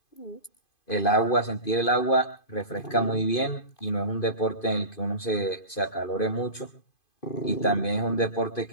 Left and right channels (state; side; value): late; right; 2.5 ms